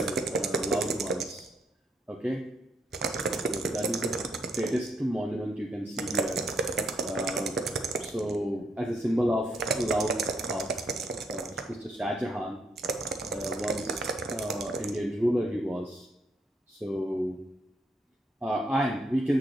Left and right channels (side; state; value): both; normal; correlation 0.75